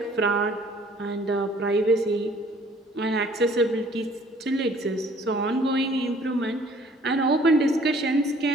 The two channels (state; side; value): normal; both; correlation 0.56